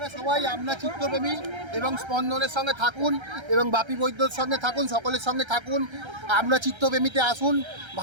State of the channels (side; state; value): left; late; 1.3 ms